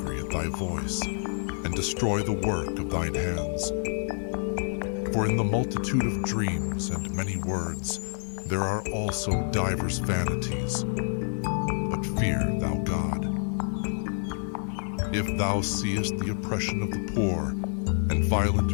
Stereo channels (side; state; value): right; silent; digital silence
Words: at thy voice, and destroy the work of thine hands? For in the multitude of dreams and many words there are also divers vanities. But fear thou God. If thou seest the oppression of the poor, and